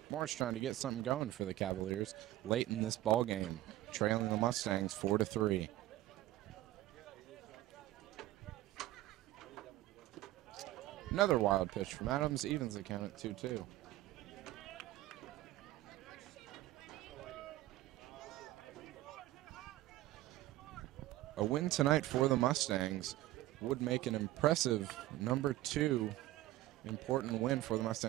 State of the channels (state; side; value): quieter; left; 16.6 dB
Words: Morris trying to get something going for the Cavaliers late in this ball game, trailing the Mustangs 4-3. Another wild pitch from Adams evens the count at 2-2. A win tonight for the Mustangs would make an impressive number 2 important win for the